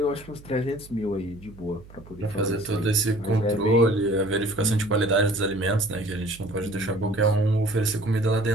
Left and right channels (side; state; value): right; noise; hum, 20 dB below the sound